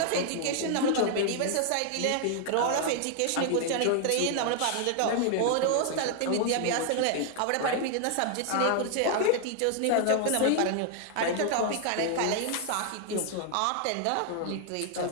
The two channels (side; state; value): both; different; correlation 0.00